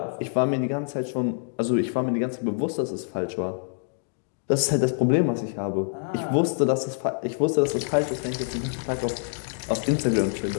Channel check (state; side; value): silent; right; digital silence